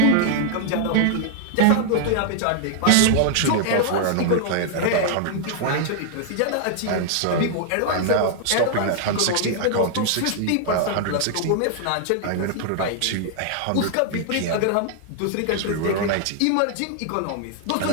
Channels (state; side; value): different; both; correlation 0.00